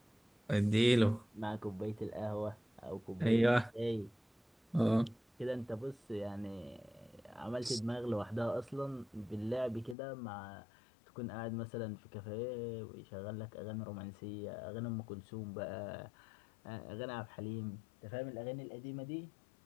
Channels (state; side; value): drops out; right; at 10.0 s